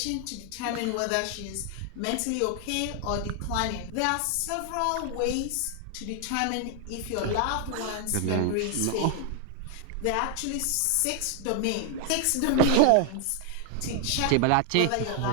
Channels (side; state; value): both; different; correlation 0.00